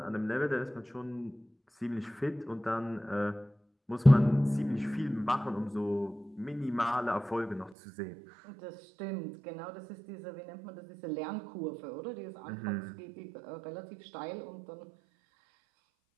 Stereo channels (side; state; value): left; drops out; at 7.8 s